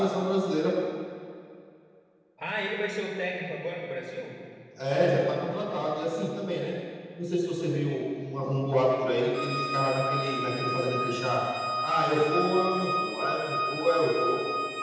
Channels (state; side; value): identical; both; correlation 1.00